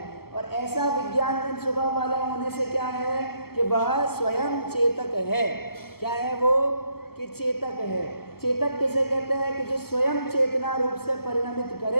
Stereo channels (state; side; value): late; right; 0.95 ms